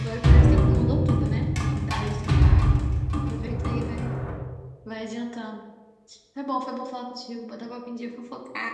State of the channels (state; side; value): identical; both; correlation 1.00